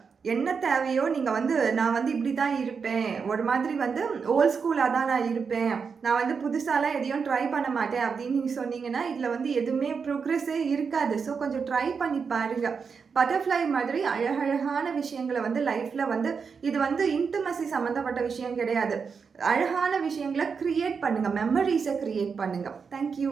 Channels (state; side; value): quieter; left; 5.7 dB